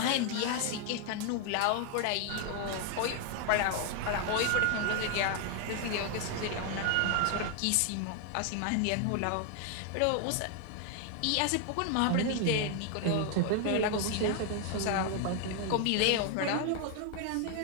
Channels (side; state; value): both; different; correlation 0.00